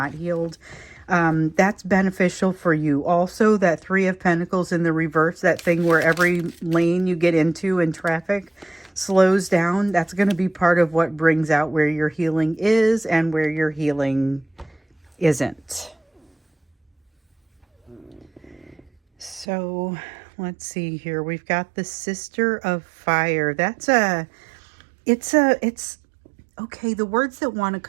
healed. That's beneficial for you. Also, that Three of Pentacles in the reverse, that thing where every lane you get into in traffic slows down, that's going to be part of what brings out where your healing is and where your healing isn't. So let's see here. We've got the Sister of Fire. Okay, the words that want to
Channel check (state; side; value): drops out; left; at 19.5 s